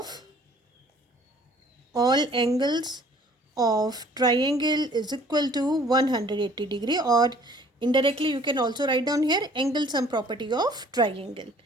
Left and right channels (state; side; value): normal; both; correlation 0.55